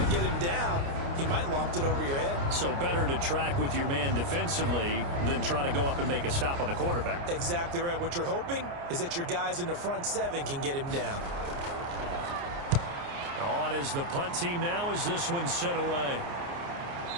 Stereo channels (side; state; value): left; late; 29 ms